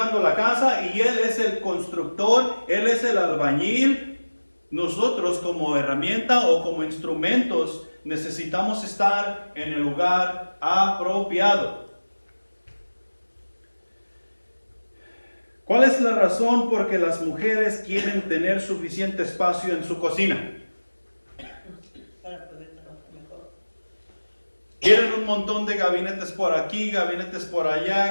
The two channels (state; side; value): inverted; both; correlation -1.00